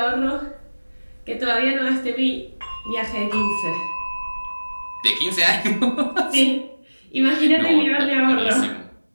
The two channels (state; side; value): inverted; both; correlation -1.00